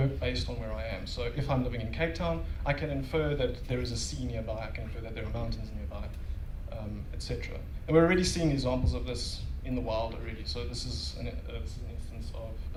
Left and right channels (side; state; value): both; identical; correlation 1.00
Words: based on where I am. So if I'm living in Cape Town, I can infer that there is a sea nearby. I can infer that there are mountains nearby, etc. And we're already seeing examples of this in the wild already. So this is an instance